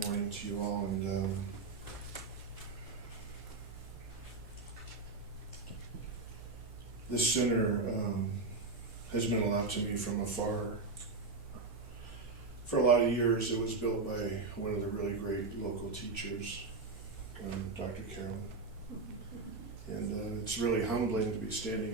morning to you all. And this center has meant a lot to me from afar. For a lot of years, it was built by one of the really great local teachers, Dr. Carolyn. And it's really humbling to be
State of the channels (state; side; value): quieter; left; 3.9 dB